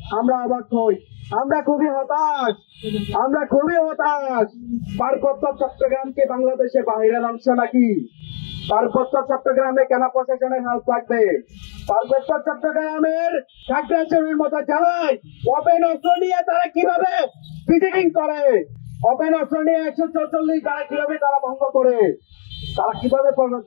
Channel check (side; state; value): right; silent; digital silence